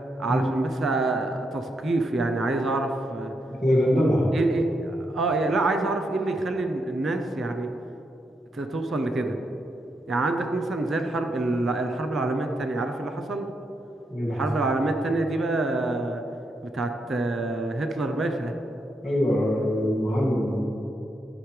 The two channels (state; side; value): normal; both; correlation 0.80